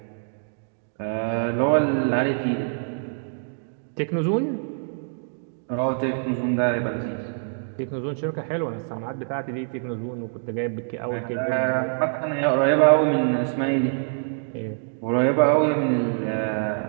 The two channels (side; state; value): left; silent; digital silence